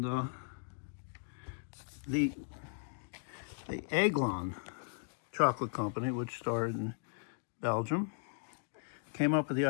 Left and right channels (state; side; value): silent; right; digital silence